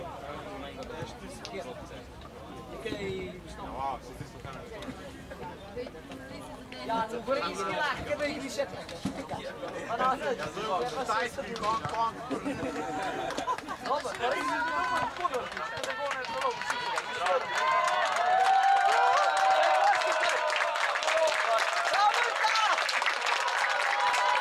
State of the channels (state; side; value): identical; both; correlation 1.00